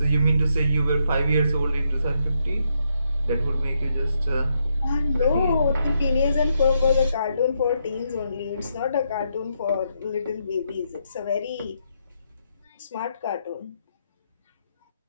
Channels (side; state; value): both; inverted; correlation -0.79